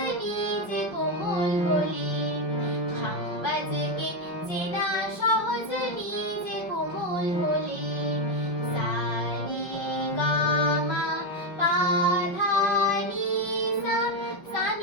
নিজে কোমল হলে, খাম বাজকে চেনা সহজ নিজে কোমল হলে। সা রে গা মা পা ধা নি সা, সা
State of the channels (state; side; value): late; right; 5.4 ms